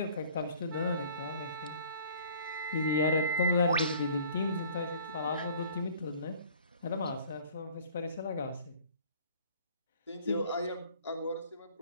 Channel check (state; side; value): inverted; both; correlation -0.51